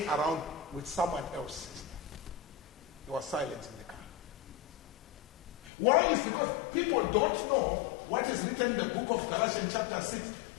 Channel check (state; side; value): drops out; right; at 5.7 s